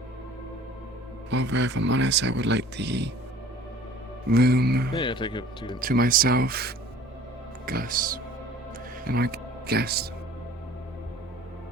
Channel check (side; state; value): both; normal; correlation 0.48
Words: Although, if I'm honest, I would like the room Yeah, take it to myself, Gus, and my guest.